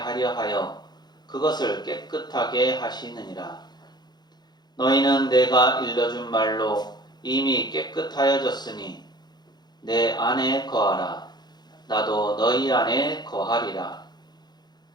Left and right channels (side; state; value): right; late; 0.20 ms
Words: 하여 그것을 깨끗하게 하시느니라. 너희는 내가 일러준 말로 이미 깨끗하여졌으니 내 안에 거하라. 나도 너희 안에 거하리라.